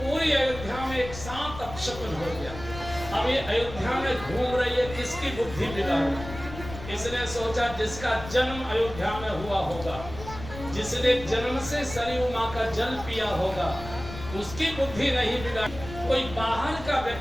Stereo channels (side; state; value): left; noise; rumble, 12 dB below the sound